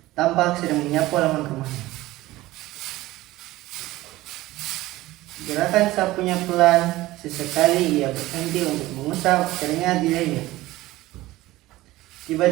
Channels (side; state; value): left; quieter; 17.6 dB